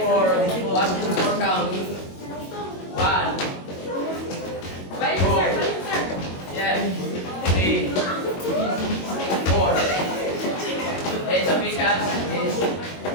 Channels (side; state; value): right; late; 22 ms